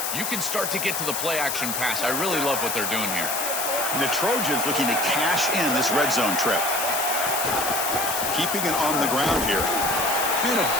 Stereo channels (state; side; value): noise; left; hiss, 2 dB below the sound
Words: you can start to get to the play-action pass. I really love what they're doing here. And the Trojans looking to cash in this red zone trip. Keeping it on the ground here. And a